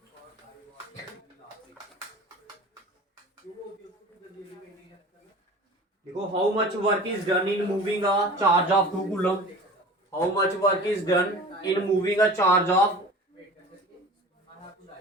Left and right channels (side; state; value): both; normal; correlation 0.39